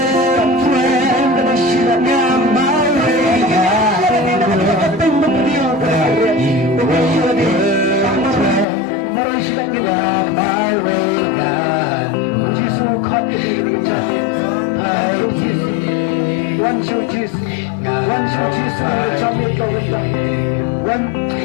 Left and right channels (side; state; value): right; drops out; at 8.7 s